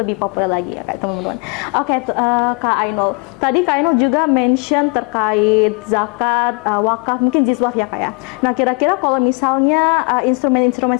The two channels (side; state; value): right; quieter; 32.4 dB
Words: populer lagi ya Kak teman-teman. Oke, Kak Ainul. Tadi Kak Ainul juga mention terkait zakat, wakaf, mungkin jizwaf ya Kak ya. Nah kira-kira kalau misalnya instrumen-instrumen